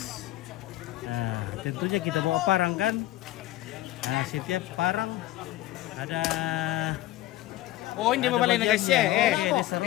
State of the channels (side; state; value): right; quieter; 16.2 dB